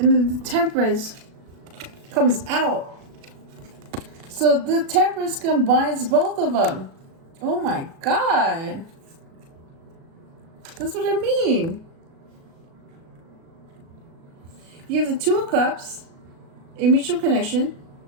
then the Temperance comes out. So the Temperance combines both of them. Oh my God. That's what I mean. You have the Two of Cups, a mutual connection.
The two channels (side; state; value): left; late; 37 ms